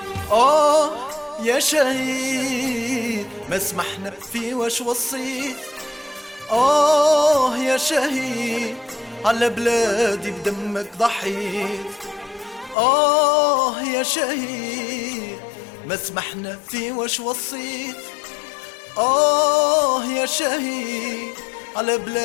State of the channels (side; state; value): right; drops out; at 12.8 s